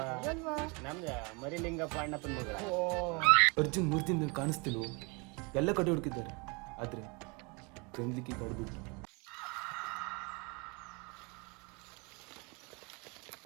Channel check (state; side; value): quieter; left; 30.0 dB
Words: ನಮ್ದು ಮರಿಲಿಂಗಪ್ಪ ಅಣ್ಣಪ್ಪನ ಮಗಳ. ಅರ್ಜುನ್ 3 ದಿನ ಕಾಣಿಸ್ತಿಲ್ವ, ಎಲ್ಲ ಕಡೆ ಹುಡುಕಿದ್ದಾರೆ, ಆದ್ರೆ ಗಂದ್ಲಿಕ್ಕಿ ಕಡ್ಬಿಟ್ಟು.